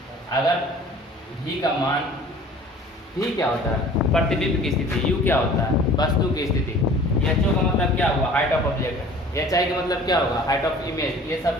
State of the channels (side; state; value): both; normal; correlation 0.47